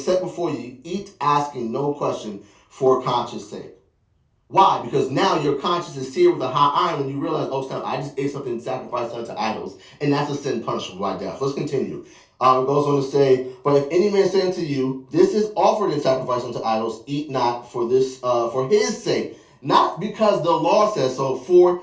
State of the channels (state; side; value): identical; both; correlation 1.00